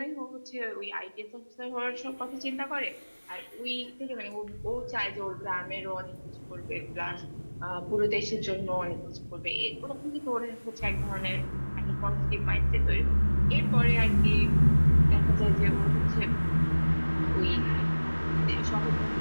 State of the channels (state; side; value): inverted; both; correlation -1.00